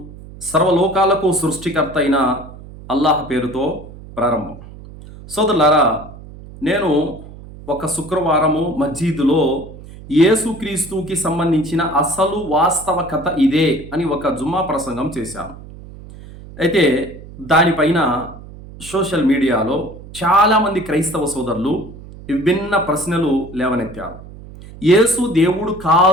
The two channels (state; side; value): noise; right; hum, 16 dB below the sound